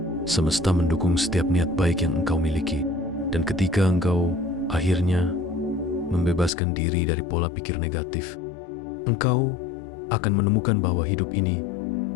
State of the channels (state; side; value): drops out; right; at 6.5 s